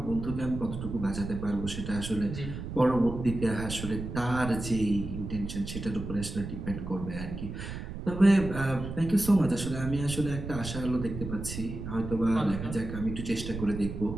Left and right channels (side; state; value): right; noise; rumble, 7 dB below the sound